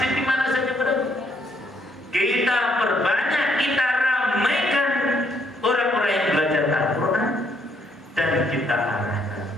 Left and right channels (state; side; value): normal; both; correlation 0.70